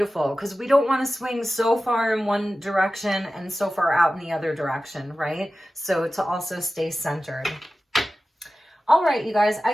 because we don't want to swing so far in one direction and so far out in the other direction, right? So to also stay centered. All right, you guys,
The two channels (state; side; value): normal; both; correlation 0.95